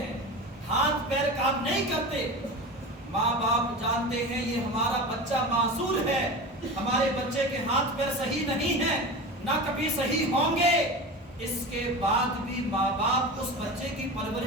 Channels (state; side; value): normal; both; correlation 0.29